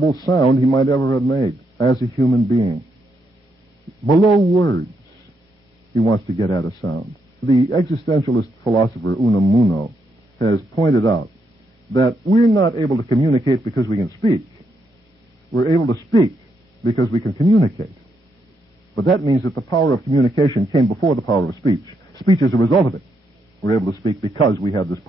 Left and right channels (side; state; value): both; normal; correlation 0.79